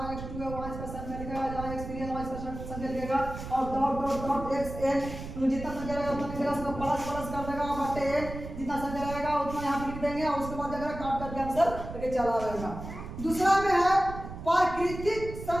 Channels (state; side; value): noise; right; rumble, 9 dB below the sound